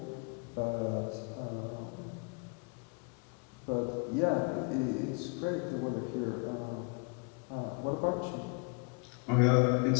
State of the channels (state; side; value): quieter; right; 34.3 dB